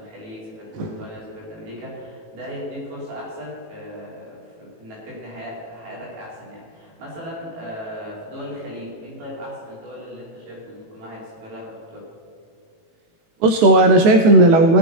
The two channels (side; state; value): left; late; 18 ms